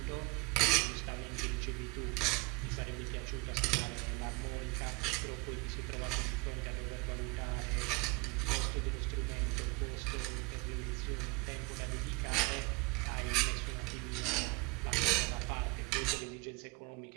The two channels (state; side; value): quieter; left; 27.4 dB